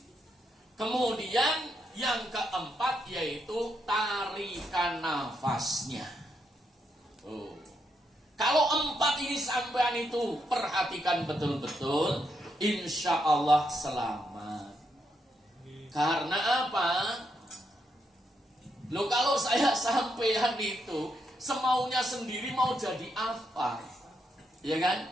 Kemudian yang keempat yaitu tarikan nafasnya. Kalau empat ini sampean itu perhatikan betul-betul, insya Allah selamat. Karena apa? Loh, kalau saya sampean itu semaunya sendiri mau jadi apa? Ya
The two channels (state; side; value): normal; both; correlation 0.80